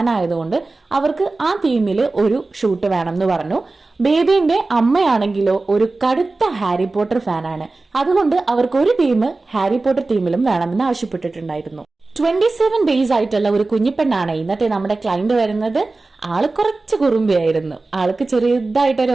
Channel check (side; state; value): left; quieter; 3.4 dB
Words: ആയതുകൊണ്ട് അവർക്ക് ആ തീമിൽ ഒരു ഷൂട്ട് വേണം എന്ന് പറഞ്ഞു. ബേബിന്റെ അമ്മയാണെങ്കിലോ ഒരു കടുത്ത ഹാരി പോട്ടർ ഫാനാണ്. അതുകൊണ്ട് അവർക്ക് ഒരു തീം ഹാരി പോട്ടർ തീമിലും വേണമെന്ന് ആവശ്യപ്പെട്ടിട്ടുണ്ടായിരുന്നു. 27 ഡേയ്സ് ആയിട്ടുള്ള ഒരു കുഞ്ഞിപ്പെണ്ണാണ് ഇന്നത്തെ നമ്മുടെ ക്ലയന്റ് വരുന്നത്. ആള് കുറച്ച് കുറുമ്പിയായിരുന്നു. ആൾക്ക് ചെറിയതായിട്ടൊരു